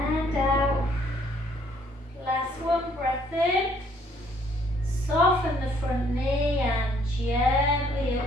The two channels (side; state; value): both; normal; correlation 0.64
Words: out. Last one, breath in. Soften the front knee and gently